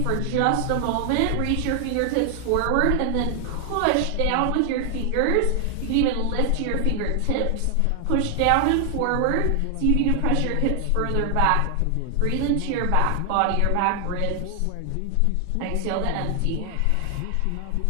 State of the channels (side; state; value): both; different; correlation 0.00